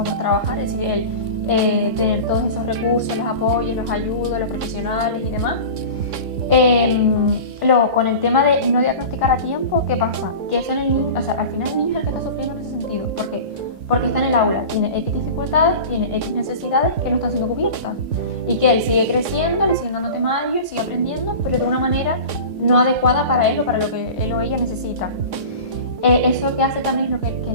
por trabajar, es decir, el tener todos esos recursos, los apoyos, los ayudos, los profesionales y demás. Luego, con el tema de no diagnosticar a tiempo, ¿qué pasa? Que eso en el niño, o sea, al final el niño es el que está sufriendo en ese sentido. ¿Por qué? Porque está en el aula, tiene X dificultades, tiene X necesidades que no están siendo cubiertas. Y que él sigue creciendo, le siguen dando temarios, sigue aprendiendo, pero de una manera no adecuada para él o para lo que él o ella necesita. Eso que hace también es lo que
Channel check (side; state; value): left; late; 3.6 ms